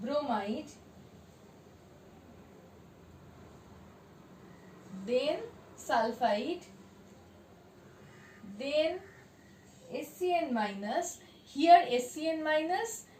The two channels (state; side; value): identical; both; correlation 1.00